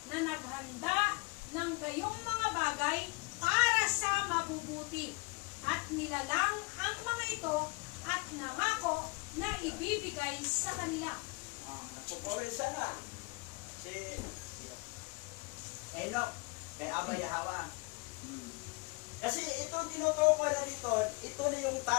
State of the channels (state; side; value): quieter; right; 27.9 dB